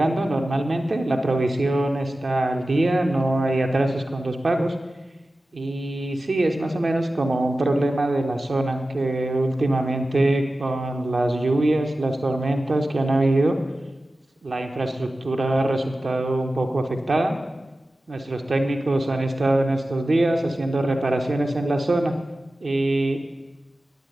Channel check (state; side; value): normal; both; correlation 0.95